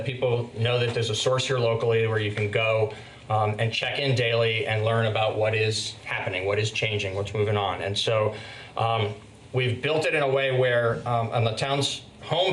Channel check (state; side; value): identical; both; correlation 1.00